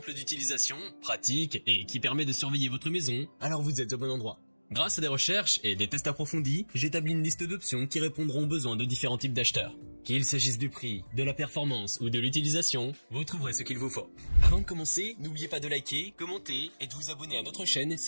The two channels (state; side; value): inverted; both; correlation -1.00